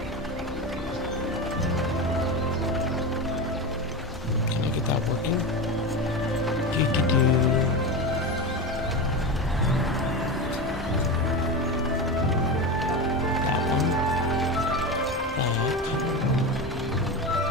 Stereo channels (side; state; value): both; normal; correlation 0.22